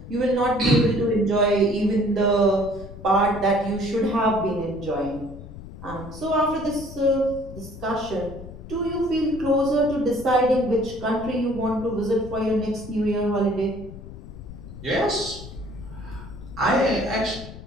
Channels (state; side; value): noise; left; rumble, 14 dB below the sound